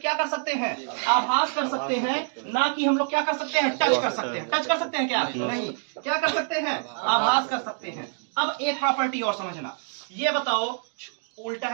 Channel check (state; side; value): silent; left; 58 dB below the other